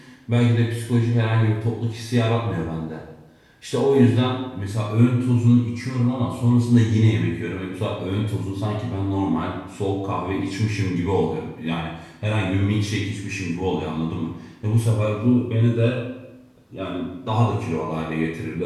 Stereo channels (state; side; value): identical; both; correlation 1.00